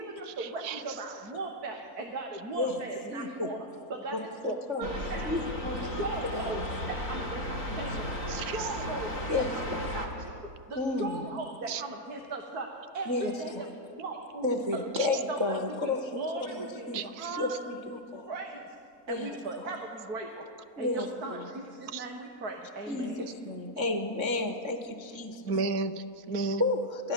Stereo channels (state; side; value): late; left; 3.6 ms